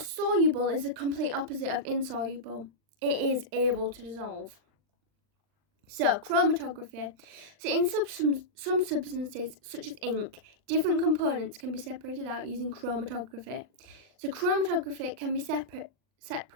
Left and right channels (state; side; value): late; left; 39 ms